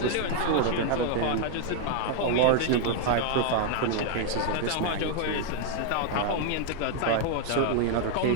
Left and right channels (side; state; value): both; different; correlation 0.00